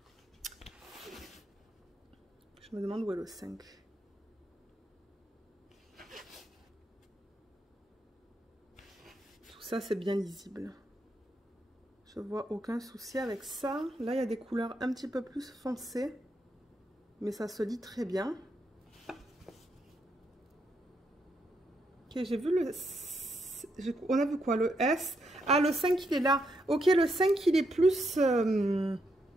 Je me demande où est le 5. Tout ça, c'est bien lisible. Je vois aucun souci avec ça. Là, il y a des couleurs un petit peu plus foncées. Mais ça se lit très bien. Ok, j'ai vu le... On a vu quoi? Le S. Ah, le 5, il est là. Ok, le 5, il est plus...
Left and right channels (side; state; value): both; normal; correlation 0.79